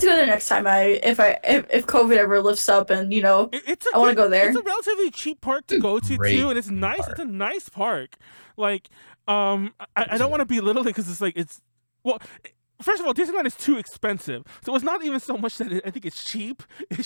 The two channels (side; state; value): both; inverted; correlation -1.00